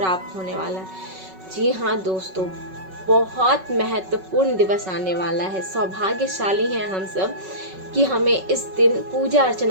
होने वाला है। जी हाँ दोस्तों, बहुत महत्वपूर्ण दिवस आने वाला है। सौभाग्यशाली हैं हम सब कि हमें इस दिन पूजा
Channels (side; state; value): left; late; 5.3 ms